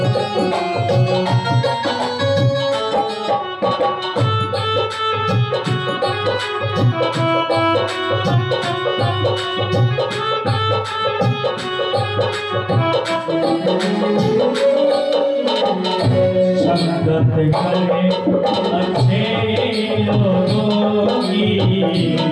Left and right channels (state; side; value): identical; both; correlation 1.00